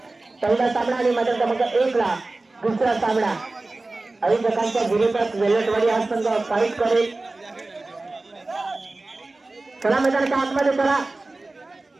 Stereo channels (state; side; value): quieter; left; 3.1 dB